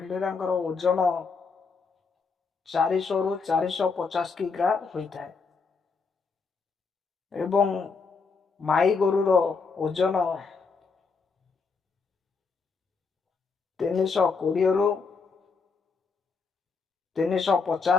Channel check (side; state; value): right; quieter; 4.8 dB